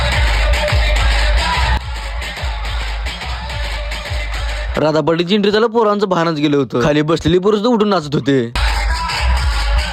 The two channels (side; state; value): both; identical; correlation 1.00